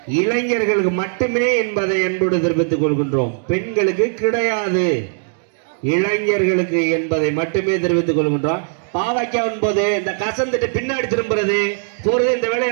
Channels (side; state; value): left; silent; digital silence